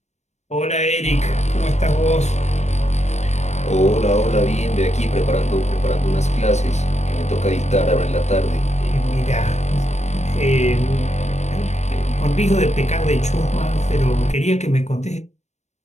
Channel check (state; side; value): late; right; 0.33 ms